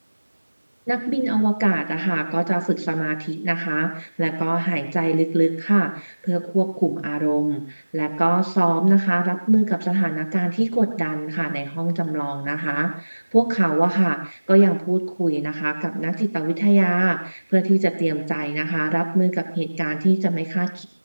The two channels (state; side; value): inverted; both; correlation -1.00